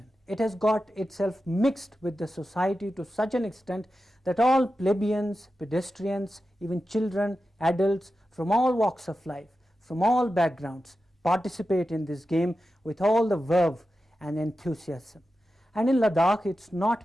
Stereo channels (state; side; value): normal; both; correlation 0.92